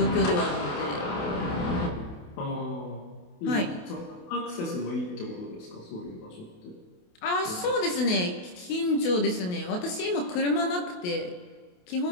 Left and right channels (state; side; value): late; right; 28 ms